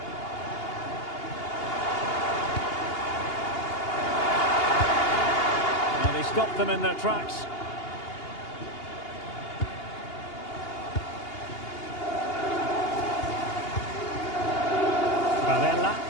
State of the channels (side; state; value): right; late; 2.8 ms